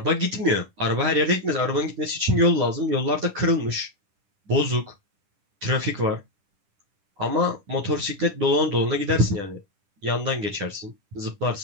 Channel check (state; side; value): late; left; 10 ms